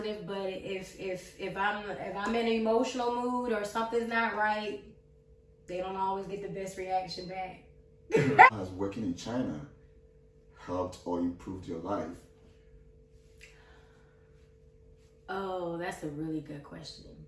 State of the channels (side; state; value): both; identical; correlation 1.00